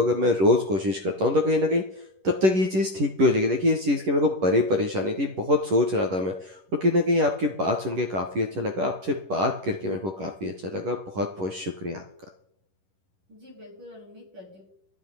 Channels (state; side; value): late; left; 11 ms